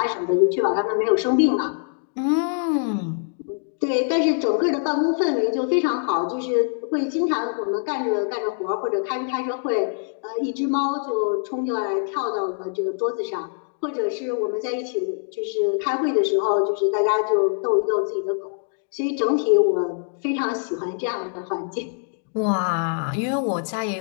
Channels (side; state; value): right; silent; 62 dB below the other